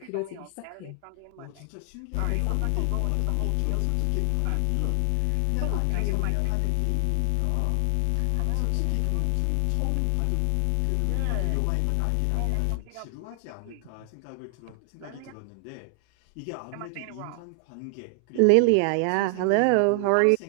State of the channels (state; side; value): different; both; correlation 0.00